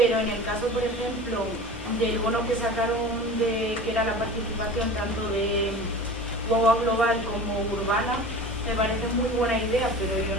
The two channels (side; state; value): both; normal; correlation 0.36